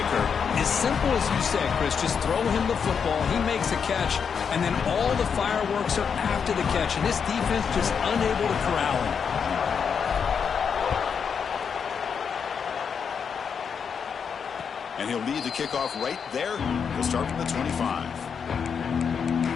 As simple as you said, Chris, just throw him the football, he makes a catch, and then all the fireworks are after the catch, and this defense just unable to corral him. And he'll lead the kickoff right there. He'll start from the 25.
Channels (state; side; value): quieter; right; 6.6 dB